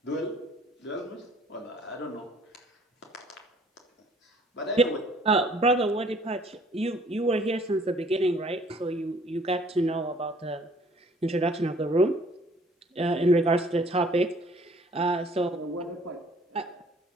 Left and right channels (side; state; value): both; normal; correlation 0.57